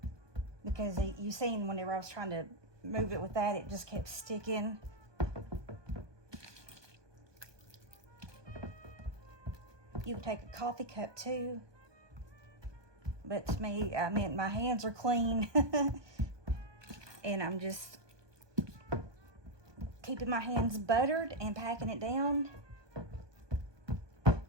Because you seen whenever I was trying to move it with that, it just kept sticking. You can take a coffee cup too. But to me, my hands are clean. And I'm just keeping my hands buttered and packing it down.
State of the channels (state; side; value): late; left; 1.2 ms